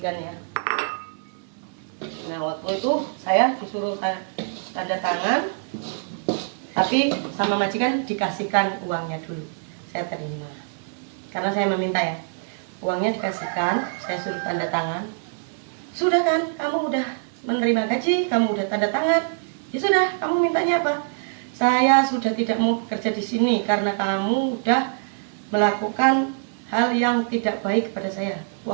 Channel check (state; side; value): silent; left; digital silence